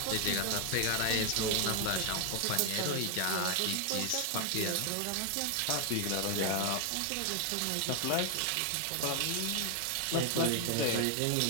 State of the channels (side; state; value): both; different; correlation 0.00